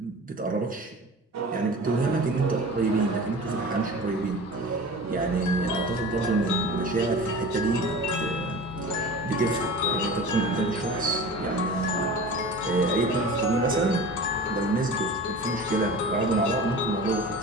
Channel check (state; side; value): normal; both; correlation 0.36